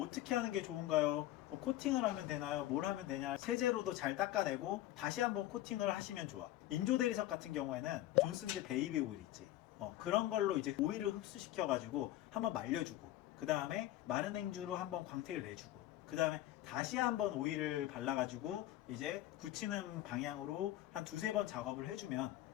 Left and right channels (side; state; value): right; quieter; 14.6 dB